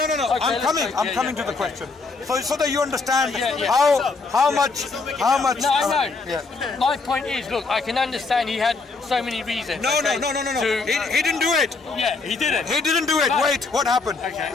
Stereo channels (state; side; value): quieter; right; 4.1 dB